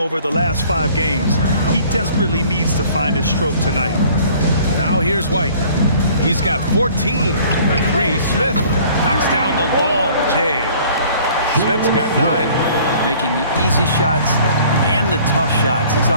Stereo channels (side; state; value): both; inverted; correlation -0.53